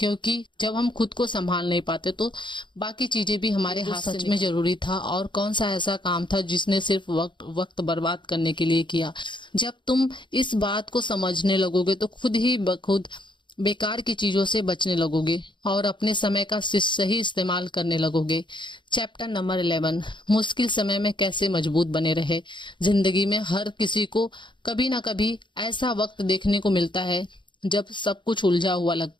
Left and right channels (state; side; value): late; right; 0.23 ms